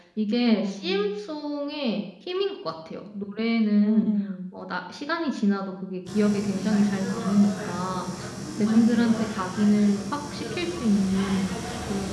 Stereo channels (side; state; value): both; identical; correlation 1.00